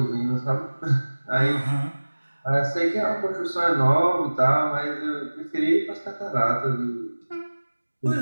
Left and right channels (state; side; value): inverted; both; correlation -1.00